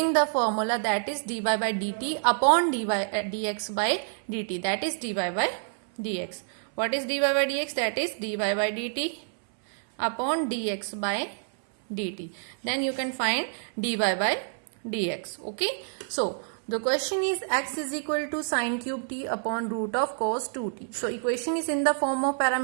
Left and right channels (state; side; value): silent; left; 59 dB below the other